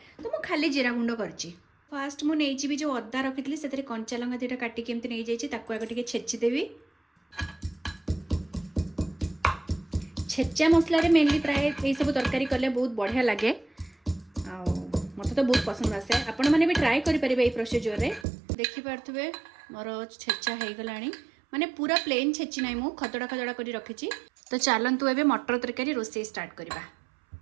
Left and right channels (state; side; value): drops out; left; at 18.2 s